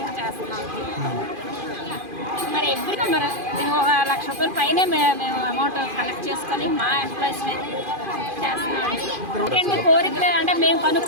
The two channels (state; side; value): late; left; 2.5 ms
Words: చేస్తున్నాం. మరి ఎప్పుడు మరి మేము 1 లక్ష రూపాయల పైనే మేము అమౌంట్ కలెక్ట్ చేసుకొని మా ఎంప్లాయీస్ మీద చేస్తున్నాం. ఎందుకంటే కోరికలు అంటే మేము